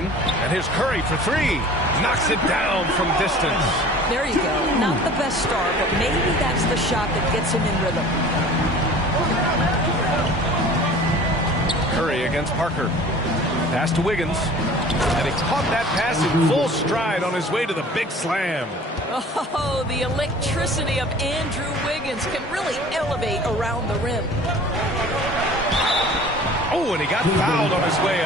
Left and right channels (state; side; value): normal; both; correlation 0.45